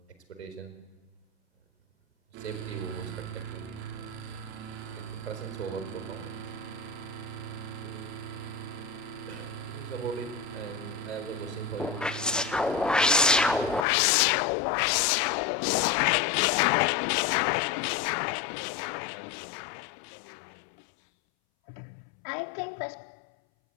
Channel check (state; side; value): drops out; right; at 13.9 s